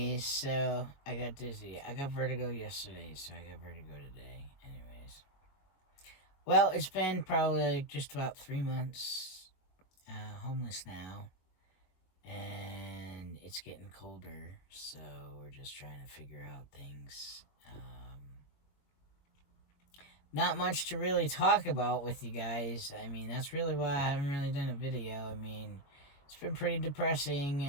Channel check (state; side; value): late; right; 22 ms